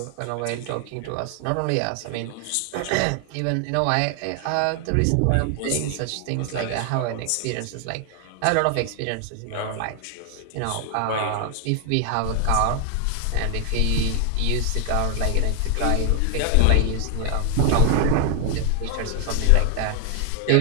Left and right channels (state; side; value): different; both; correlation 0.00